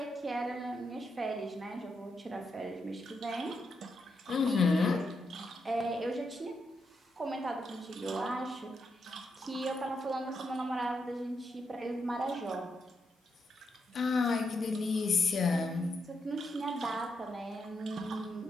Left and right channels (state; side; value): normal; both; correlation 0.82